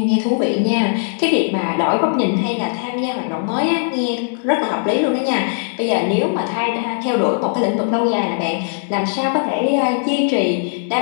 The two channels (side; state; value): right; silent; digital silence